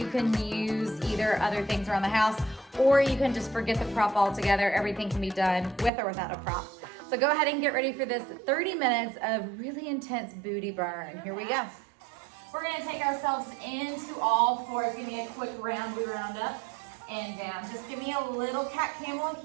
can use either other things around the house, or you can just forget the prop altogether. Everything can be done with or without a prop. So go ahead and get ready for this 30 minutes of really intense booty burn. Here we go. We're gonna take ourselves into all fours. Give me a quick round up and down. Just give me a little cat camel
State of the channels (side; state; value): left; drops out; at 5.9 s